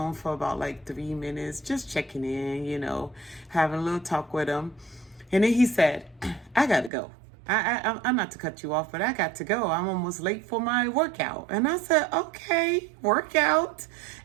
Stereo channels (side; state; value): left; drops out; at 6.9 s